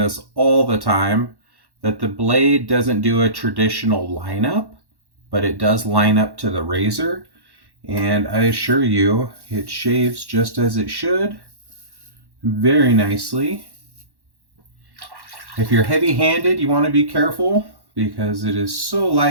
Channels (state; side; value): late; left; 1.1 ms